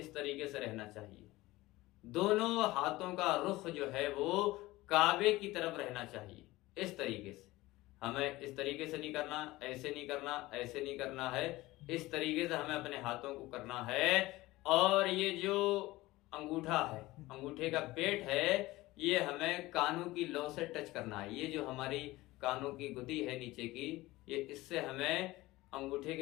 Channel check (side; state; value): right; quieter; 18.9 dB